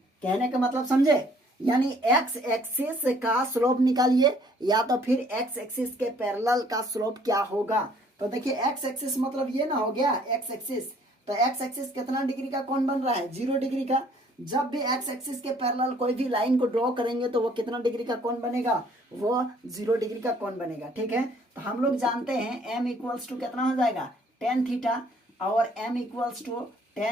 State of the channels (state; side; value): normal; both; correlation 0.60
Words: कहने का मतलब समझे, यानी x एक्सिस का स्लोप निकालिए या तो फिर x एक्सिस के पैरेलल का स्लोप क्या होगा। तो देखिए x एक्सिस मतलब ये ना हो गया x एक्सिस, तो x एक्सिस कितना डिग्री का कोण बन रहा है 0 डिग्री का। जब भी x एक्सिस के पैरेलल कोई भी लाइन को ड्रॉ करेंगे तो वो कितना डिग्री का कोण बनेगा, वो 0 डिग्री का कोण बनेगा। ठीक है, तो हम लोग जानते हैं m इक्वल्स टू कितना हो जाएगा tan थीटा, और m equals to